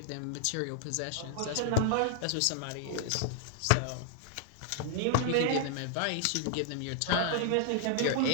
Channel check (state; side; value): different; both; correlation 0.00